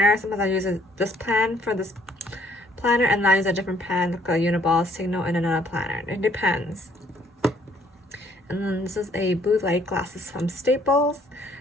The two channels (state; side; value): normal; both; correlation 0.63